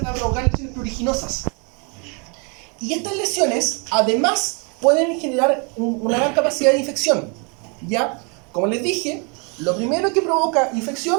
a provocar lesiones pruriginosas. Y estas lesiones además pueden generar una gran capacidad de infección. ¿Ya? Como les dije, lo primero que provoca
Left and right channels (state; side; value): quieter; left; 34.3 dB